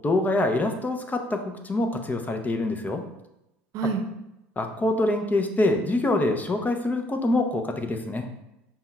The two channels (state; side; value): normal; both; correlation 0.71